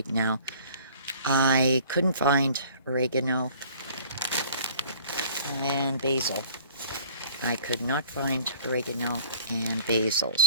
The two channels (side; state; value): both; inverted; correlation -0.50